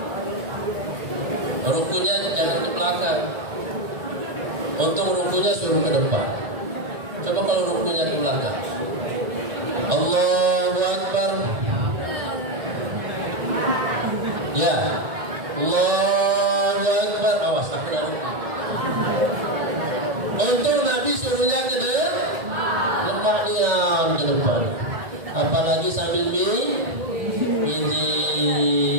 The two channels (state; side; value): late; left; 1.9 ms